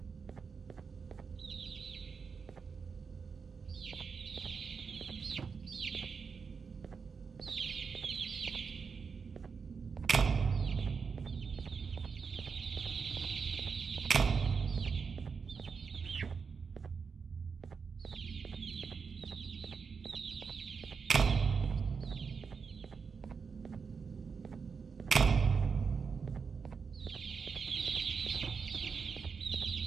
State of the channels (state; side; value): quieter; left; 5.6 dB